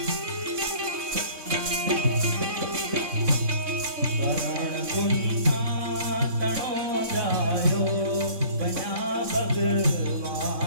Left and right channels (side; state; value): left; late; 3.6 ms